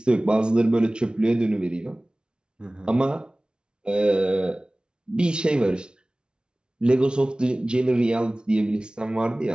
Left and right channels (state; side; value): late; left; 0.055 ms